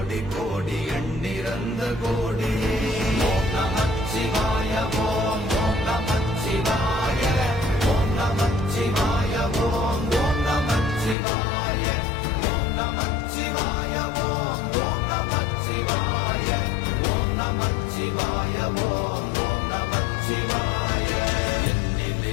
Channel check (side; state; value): right; drops out; at 11.2 s